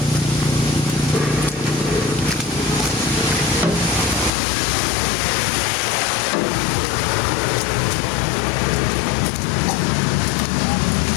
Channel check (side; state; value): right; drops out; at 4.3 s